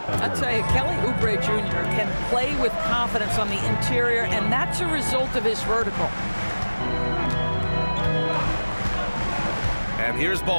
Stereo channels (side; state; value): both; inverted; correlation -1.00